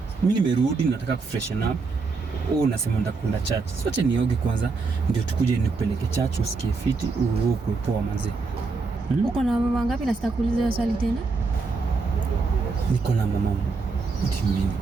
Mimi nimerudi nataka kufreshen up. Unasema ndakwenda church. Sote nioge kwanza ndio tukuje nikupeleke church usikie fiti uwe poa manzi. Uko na mama wangapi na sitakuuliza swali tena? Niko na mama. What do you mean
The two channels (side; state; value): left; quieter; 4.2 dB